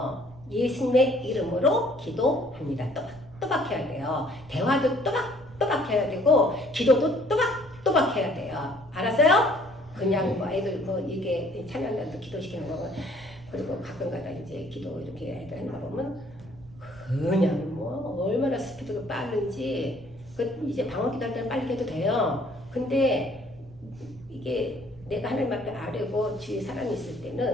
예수님의 이름으로 기도합니다. 또박 해야 돼요. 대화도 또박 해야 되고 기도도 또박 해야 돼요. 알았어요? 그냥 뭐 애들 뭐 이게 찬양단도 기도시키는 거고 그리고 가끔가다 이제 기도 이렇게 애들 하는 거 보면 그냥 뭐 얼마나 스피드가 빠른지 이제 방언기도 할 때는 빨리 해도 돼요. 근데 이게 내가 하나님 앞에 아뢰고 주위에 사람이 있을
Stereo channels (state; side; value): noise; right; rumble, 21 dB below the sound